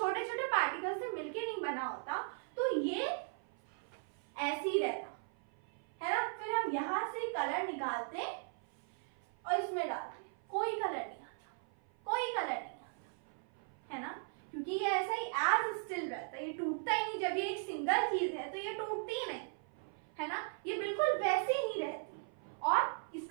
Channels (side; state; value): left; silent; 52 dB below the other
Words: छोटे पार्टिकल से मिलकर नहीं बना होता, तो ये ऐसे ही रहता है ना। फिर हम यहां से कलर निकालते और इसमें डालते, कोई कलर नहीं आता, कोई कलर नहीं आता, है ना, क्योंकि ये ऐसा ही एज स्टिल रहता है, ये टूटता ही नहीं। जब ये एक सिंगल चीज है तो ये टूटती ही नहीं, है ना, ये बिल्कुल वैसे ही रहती। और